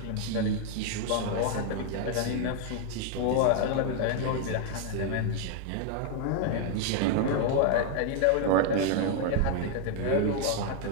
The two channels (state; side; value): different; both; correlation 0.00